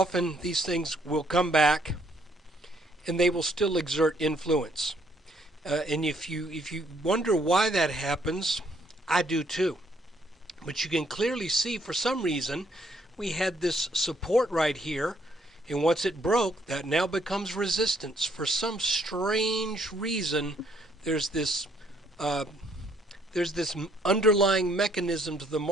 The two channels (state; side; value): normal; both; correlation 0.68